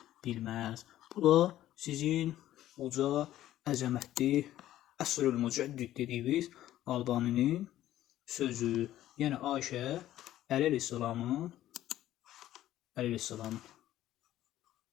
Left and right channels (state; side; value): quieter; right; 13.5 dB